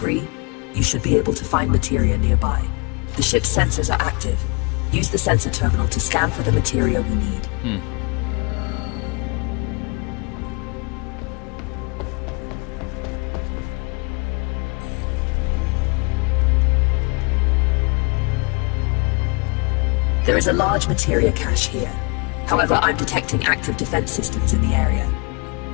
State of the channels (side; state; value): right; quieter; 32.2 dB